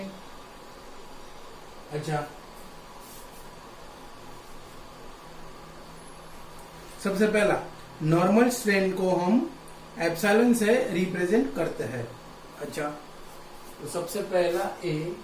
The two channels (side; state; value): both; identical; correlation 1.00